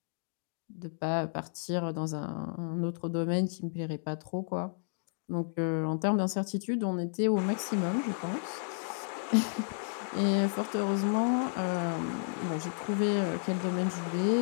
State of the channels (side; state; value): right; silent; digital silence